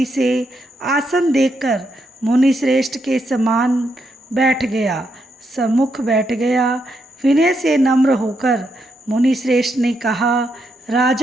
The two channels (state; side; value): normal; both; correlation 0.80